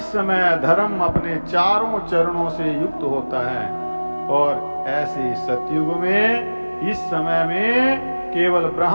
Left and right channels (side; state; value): both; inverted; correlation -1.00